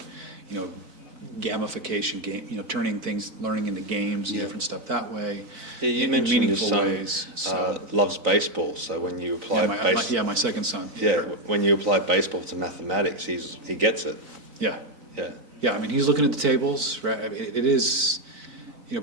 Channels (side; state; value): left; late; 3.9 ms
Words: you know, gamification, game, you know, turning things, learning into games and different stuff that way. Yeah, you in mentioned your meaningful son ways. So, loves baseball, so when you apply my second son. when you apply baseball to mathematics, he gets it. Yeah. Yeah. Yeah, I mean, he's looking at the tables, right? I mean, it is, you